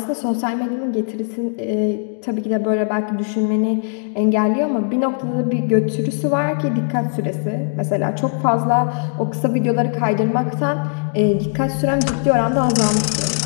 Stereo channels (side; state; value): right; silent; digital silence